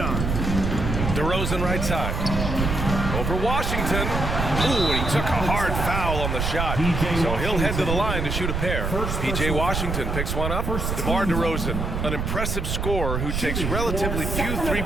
DeRozan right side. Over Washington. Ooh, and he took a hard foul on the shot. So he'll head to the line to shoot a pair. P.J. Washington picks one up. DeMar DeRozan, an impressive scorer who takes relatively few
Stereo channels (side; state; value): right; noise; rumble, 2 dB below the sound